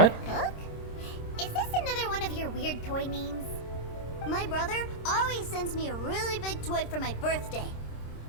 Hook? Is this another one of your weird toy names? My brother always sends me a really big toy for my birthday.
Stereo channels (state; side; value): late; right; 26 ms